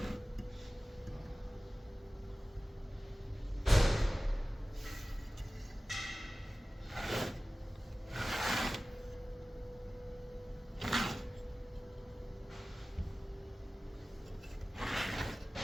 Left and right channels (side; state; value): both; normal; correlation 0.97